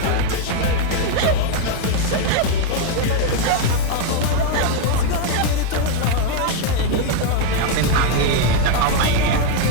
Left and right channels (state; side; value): different; both; correlation 0.01